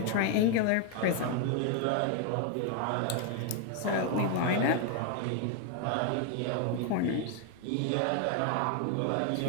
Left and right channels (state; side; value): different; both; correlation 0.00